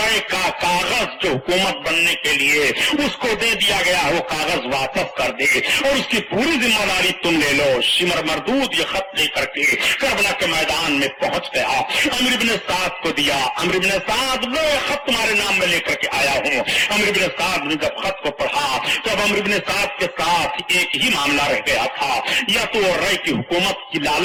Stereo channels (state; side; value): identical; both; correlation 1.00